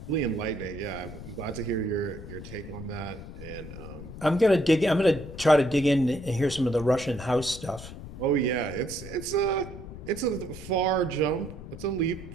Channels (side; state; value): left; noise; rumble, 12 dB below the sound